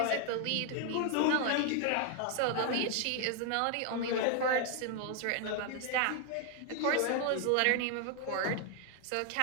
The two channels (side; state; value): both; different; correlation 0.00